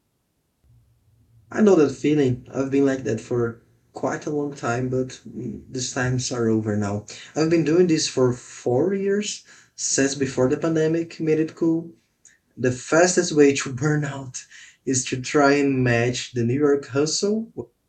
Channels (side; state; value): both; identical; correlation 1.00